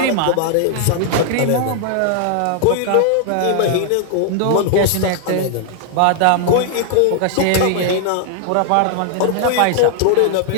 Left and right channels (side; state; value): both; different; correlation 0.00